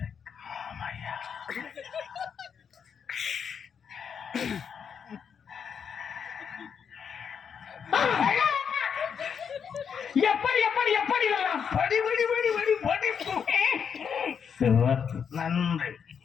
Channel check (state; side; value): quieter; right; 7.1 dB